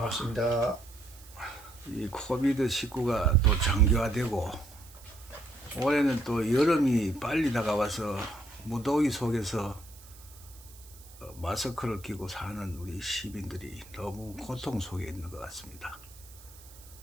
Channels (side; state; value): right; noise; hiss, 21 dB below the sound